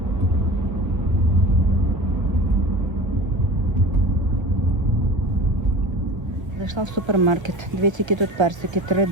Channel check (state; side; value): late; left; 1.5 ms